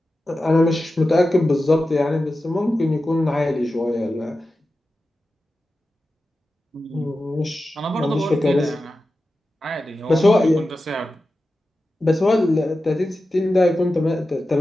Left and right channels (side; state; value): both; normal; correlation 0.92